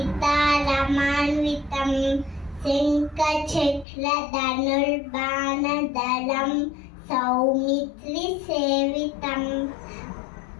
శంఖచక్ర ధనుర్బాణధరం సౌమిత్రి సేవితం.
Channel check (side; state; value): right; drops out; at 3.9 s